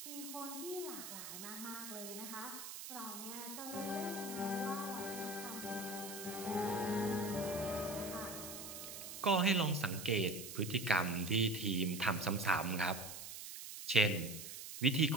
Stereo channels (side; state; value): right; noise; hiss, 9 dB below the sound